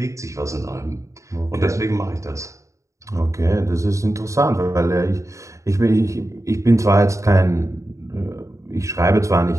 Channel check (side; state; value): left; late; 0.15 ms